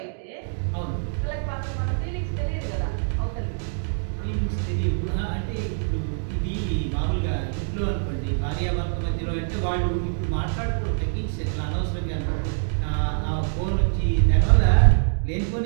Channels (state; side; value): silent; left; digital silence